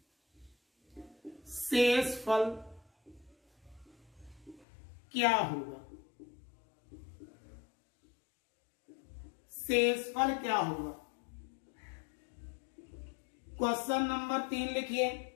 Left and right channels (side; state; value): right; drops out; at 4.7 s